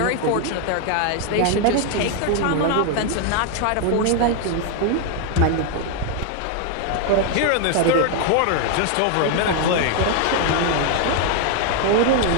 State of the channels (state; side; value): different; both; correlation 0.01